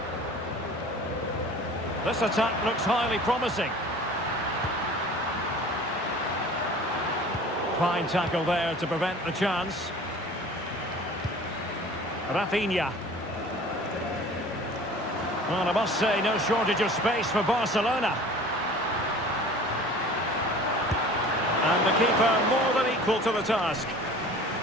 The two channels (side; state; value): both; normal; correlation 0.44